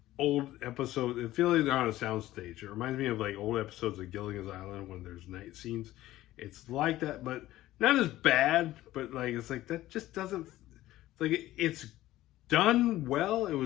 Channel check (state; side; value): quieter; right; 15.5 dB